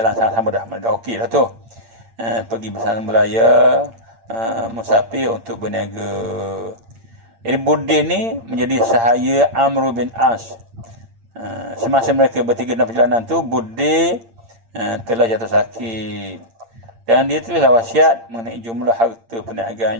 sama-sama dah okey dah tu. Pergi bersama belayar, musafir untuk berniaga. Jadi Buddin ni menjadi sahaya Amr bin As. Semasa mereka bertiga dalam perjalanan tu, Buddin telah jatuh sakit. Dan dia tulislah wasiat mengenai jumlah harta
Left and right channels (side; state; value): left; late; 8.8 ms